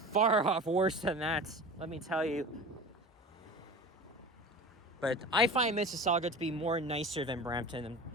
off worse than that, let me tell you. But I find Mississauga to be more nicer than Brampton.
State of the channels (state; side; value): normal; both; correlation 0.34